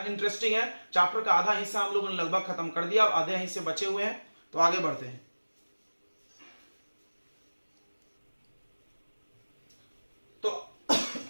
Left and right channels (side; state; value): both; inverted; correlation -1.00